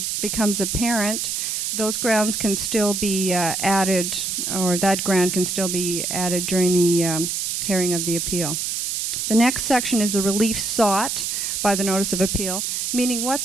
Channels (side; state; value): right; noise; hiss, 1 dB below the sound